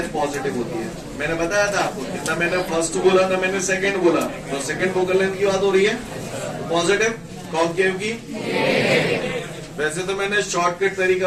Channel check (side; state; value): both; identical; correlation 1.00